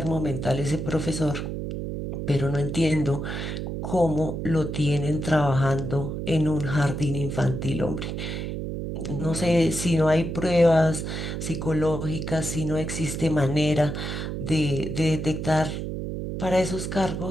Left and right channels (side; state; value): right; noise; hum, 4 dB below the sound